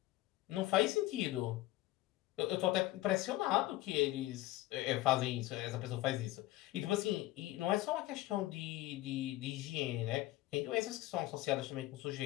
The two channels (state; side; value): quieter; right; 17.1 dB